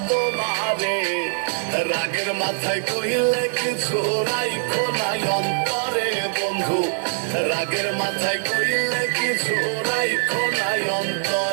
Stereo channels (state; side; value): silent; left; digital silence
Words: তোমারে। রাগের মাথায় কইলে কিছু রাইখো নাই অন্তরে বন্ধু, রাগের মাথায় কইলে কিছু রাইখো নাই